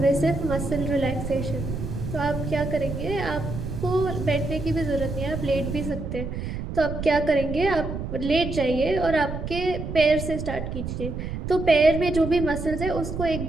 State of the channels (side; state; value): right; noise; rumble, 6 dB below the sound